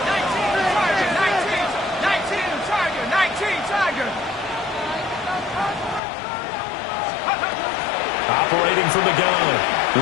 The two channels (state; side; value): drops out; right; at 6.0 s